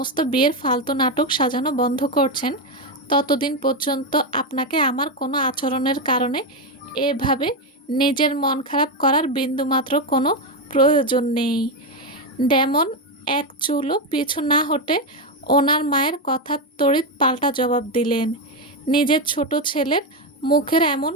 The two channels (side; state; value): both; normal; correlation 0.08